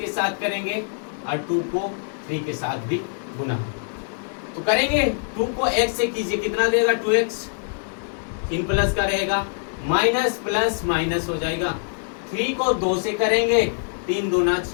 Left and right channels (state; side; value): silent; right; 63 dB below the other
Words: साथ करेंगे और 2 को 3 के साथ भी गुना। तो करेंगे 2 को x से कीजिए, कितना देगा 2x, 3 प्लस का रहेगा, माइनस प्लस माइनस हो जाएगा। 3 को 2 से करेंगे, 3 दूना